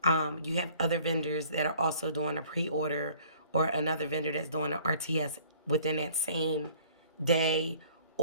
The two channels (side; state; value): both; inverted; correlation -0.54